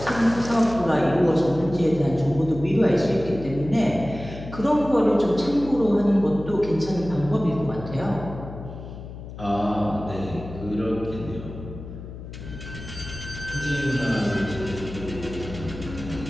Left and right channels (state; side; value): noise; left; hum, 12 dB below the sound